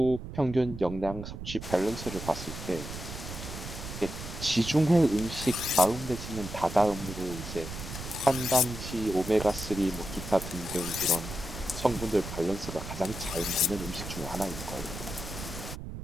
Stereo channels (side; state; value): right; noise; rumble, 9 dB below the sound